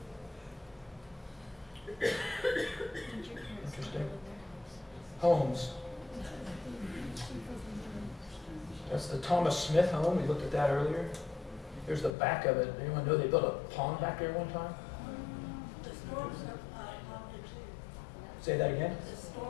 Interesting. Homes. That's the Thomas Smith home. We looked at that earlier. Here's the back of it. Anyone know they built a pond back there one time? The storms have popped in too. Say that again? The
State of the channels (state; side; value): drops out; right; at 12.1 s